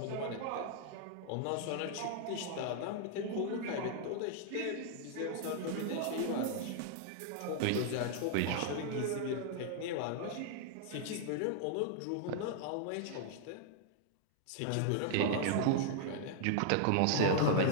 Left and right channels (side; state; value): both; different; correlation -0.01